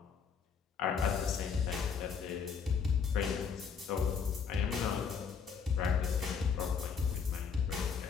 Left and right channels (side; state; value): right; quieter; 6.3 dB